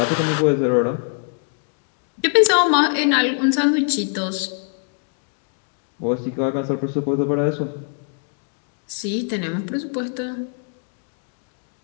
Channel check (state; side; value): silent; right; 57 dB below the other